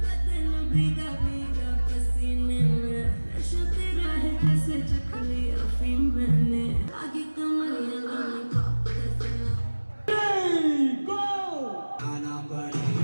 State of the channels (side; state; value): both; inverted; correlation -1.00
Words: भीगा भीगा पसीने में नशा तेरा है जैसे चख लिया अफीम मैंने आगे कमरिया लॉलीपॉप जैसे आना